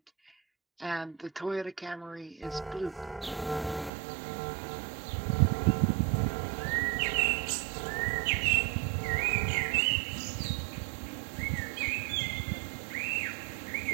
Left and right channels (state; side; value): drops out; left; at 3.9 s